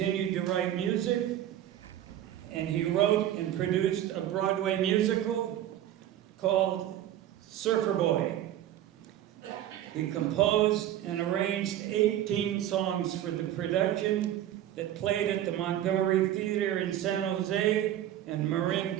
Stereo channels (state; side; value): quieter; left; 12.1 dB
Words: to write music, and he wrote and produced a Broadway musical called Surfer Boy. He composed and arranged 18 songs for the production that played at the Montgomery Theater in San Jose and Marin